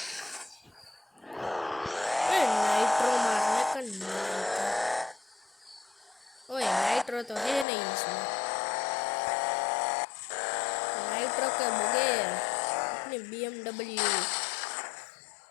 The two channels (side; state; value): right; drops out; at 7.7 s